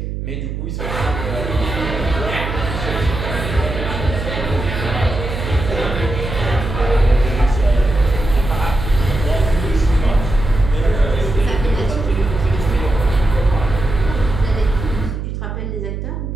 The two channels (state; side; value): noise; right; hum, 5 dB below the sound